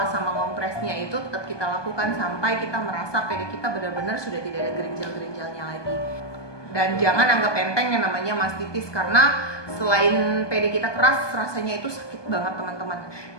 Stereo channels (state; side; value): late; right; 1.2 ms